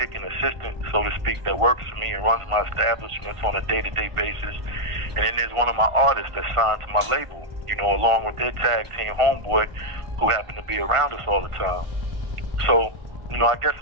and assistant, so to speak, that works for me and runs my establishments on a day-to-day basis. And then there's one of my artists that's signed to my label, you know, along with their tag team homeboy, who happened to be around us all the time. So, you know, I guess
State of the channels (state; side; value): late; left; 1.5 ms